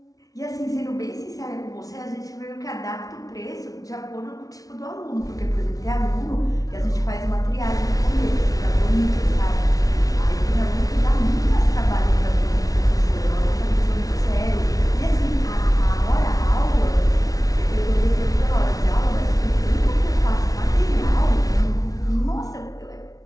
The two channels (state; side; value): late; right; 0.18 ms